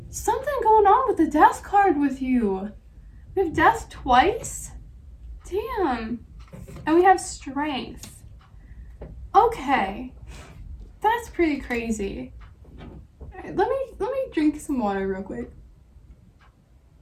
Something going on with the Death card with you. We have Death twice? Damn. And we have Strength. Okay. That's pretty crazy. All right, let me drink some water real quick.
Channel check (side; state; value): both; identical; correlation 1.00